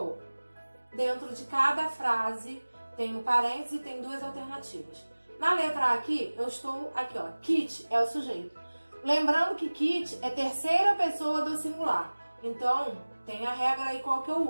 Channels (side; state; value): both; inverted; correlation -1.00